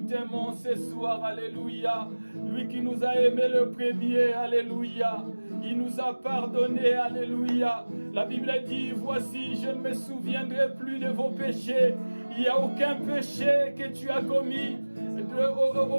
ce soir, alléluia. Lui qui nous a aimés le premier, alléluia. Il nous a pardonné, alléluia. La Bible dit, voici, je ne me souviendrai plus de vos péchés. Il n'y a aucun péché que tu as commis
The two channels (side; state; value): both; inverted; correlation -1.00